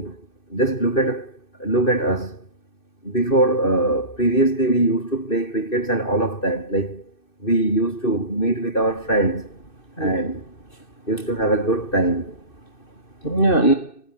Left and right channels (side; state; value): right; late; 2.6 ms